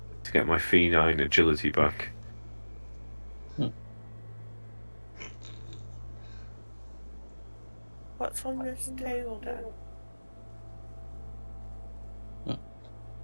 to get my feline agility back. What's on this table, Dan?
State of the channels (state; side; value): inverted; both; correlation -1.00